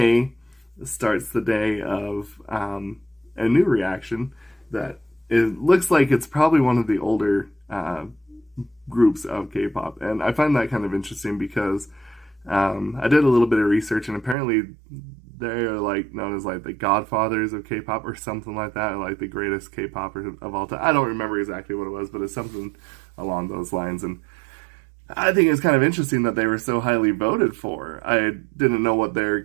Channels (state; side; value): drops out; left; at 14.4 s